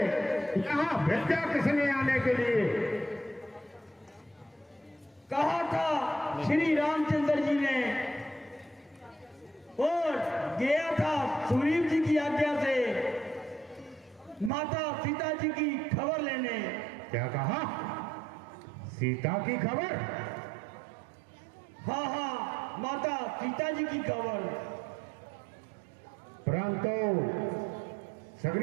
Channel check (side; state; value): left; drops out; at 14.5 s